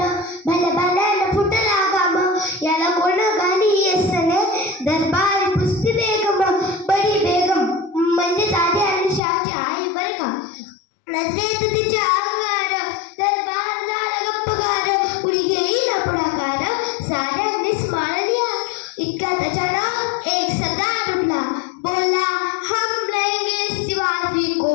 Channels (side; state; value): right; drops out; at 9.2 s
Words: भल्या भल्यानं फुटला गाम. याला कोण गाणी असले दरबार पुस्ती बेगम. बडी बेगम म्हणजे आधी आणि शहाची आई बरं का. नजरेत तिच्या अंगार दरबार झाला गप्पगार. उडी घेईना पुढाकार साऱ्यांनीच मानल्या. इतक्यात अचानक एक सरदार उठला, बोलला हम लेंगे शिवाजी को.